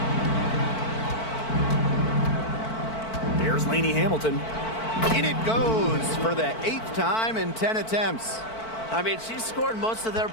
Here's Lainey Hamilton. In it goes for the 8th time in 10 attempts. I mean, she scored most of their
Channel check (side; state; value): right; late; 4.5 ms